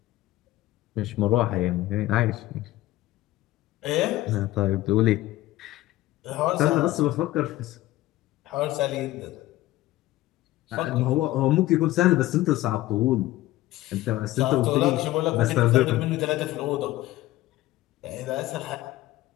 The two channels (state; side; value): quieter; right; 16.5 dB